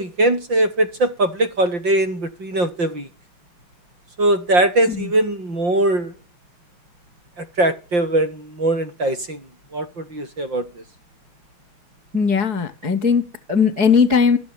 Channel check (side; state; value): left; late; 5.7 ms